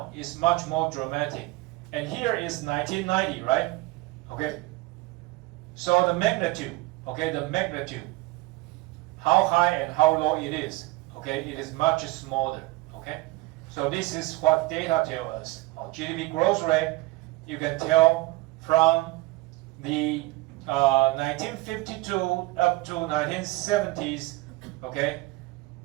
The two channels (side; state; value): left; quieter; 20.5 dB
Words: is much more dramatic. And here is 1990, right? Okay. So the magnitude, okay, the magnitude, how high and how low it is, okay, it is much smaller, okay. So this is what data tell us. GDP growth rate, you can tell from the 1952 up to 1970s, okay,